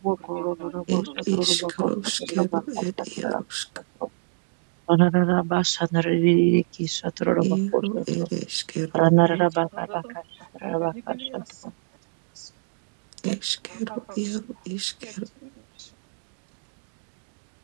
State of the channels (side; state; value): left; silent; digital silence